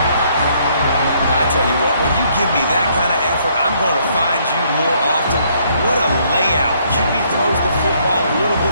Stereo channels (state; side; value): inverted; both; correlation -0.68